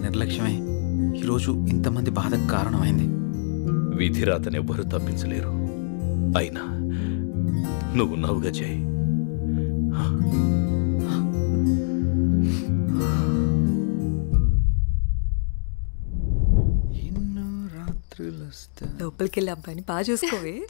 నిర్లక్ష్యమే ఈరోజు ఇంతమంది బాధకు కారణమైంది. విధిరాతనెవ్వరూ తప్పించలేరు. అయినా నువ్వున్నావుగా జై. లోపలికి వెళ్ళి అబ్బాయిని బాగా చూసుకోవే.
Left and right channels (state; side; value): silent; right; digital silence